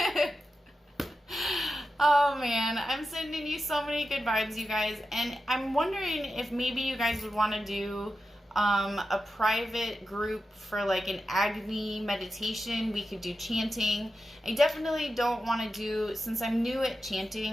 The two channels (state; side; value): normal; both; correlation 0.91